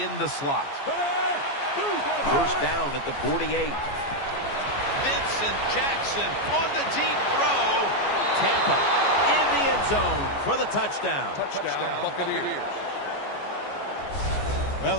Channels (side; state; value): right; late; 14 ms